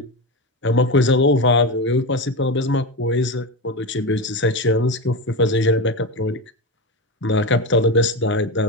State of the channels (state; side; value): normal; both; correlation 0.18